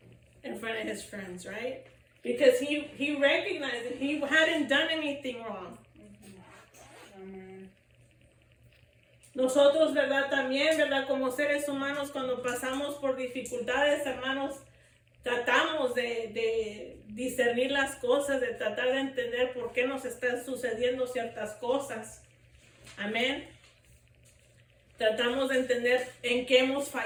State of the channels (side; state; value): both; identical; correlation 1.00